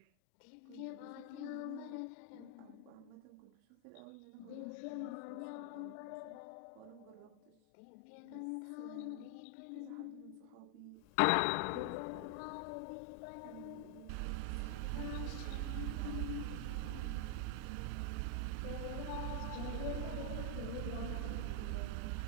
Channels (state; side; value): different; both; correlation 0.00